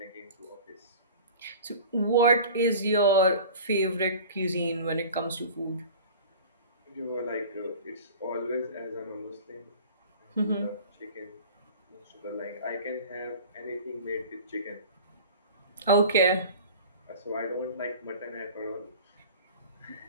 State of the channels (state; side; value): inverted; both; correlation -0.40